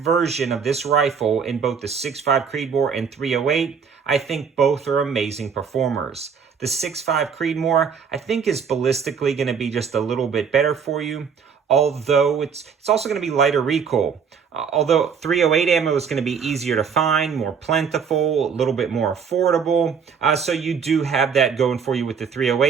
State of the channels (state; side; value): quieter; left; 6.5 dB